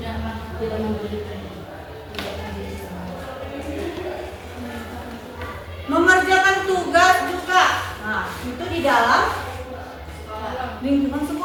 mengerjakan tugas juga. Nah, itu di dalam lingkungan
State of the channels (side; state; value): both; identical; correlation 1.00